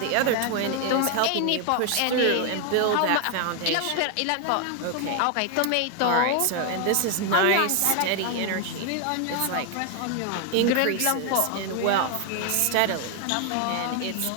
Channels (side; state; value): both; different; correlation 0.00